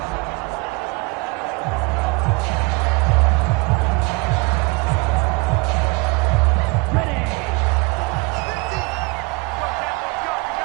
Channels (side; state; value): left; quieter; 27.6 dB